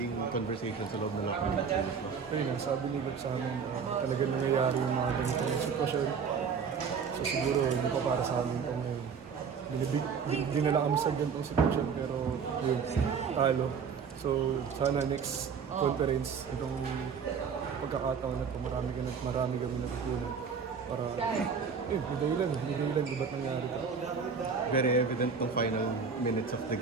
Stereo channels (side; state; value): left; quieter; 6.1 dB